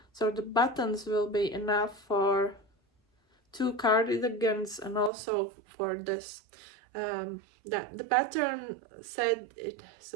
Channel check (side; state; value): left; drops out; at 5.1 s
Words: so the buttons will be enough for 2 cardigans and also for this. That the pattern said it's